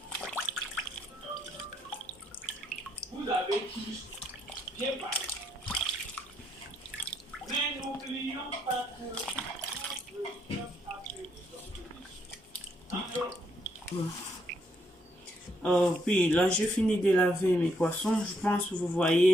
Vous avez tous bien parlé. Mais n'oublions pas que... puis là, j'ai fini de laver mes poissons. Je pense que vous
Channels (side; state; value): both; normal; correlation 0.74